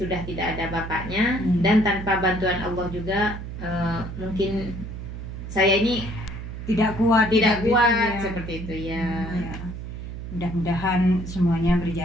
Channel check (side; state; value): right; noise; hum, 8 dB below the sound